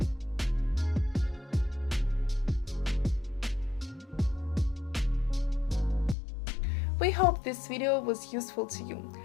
We hope this video was useful to you.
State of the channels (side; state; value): right; drops out; at 6.2 s